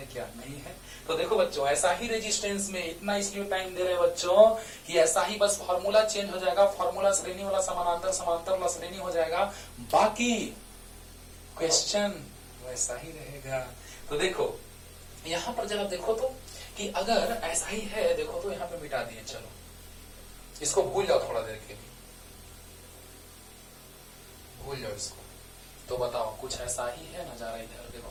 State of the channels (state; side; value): identical; both; correlation 1.00